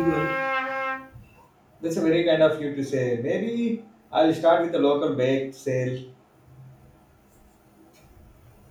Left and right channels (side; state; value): both; identical; correlation 1.00